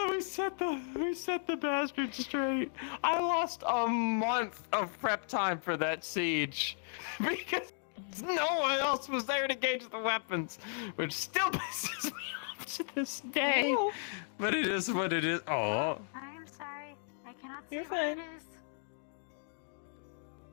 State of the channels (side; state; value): right; silent; digital silence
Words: we set the bastards straight. I lost a month of prep time for that siege because No one else was there to gauge the weapons, which still pisses me off to this day. Oh. But it is what it is. Oh. I'm sorry. I cannot You're see what it fine. is.